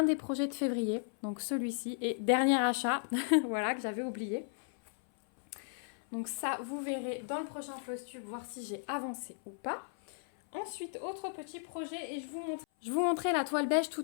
des projets de février, donc celui-ci, et dernier achat, voilà, que j'avais oublié. Donc ça vous verrez dans le prochain floss tube voir si j'ai avancé ou pas. Ensuite, autre petit projet et je vous montrais la toile beige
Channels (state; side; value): silent; right; 54 dB below the other